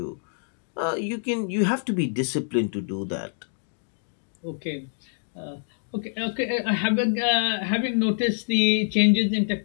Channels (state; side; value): silent; right; digital silence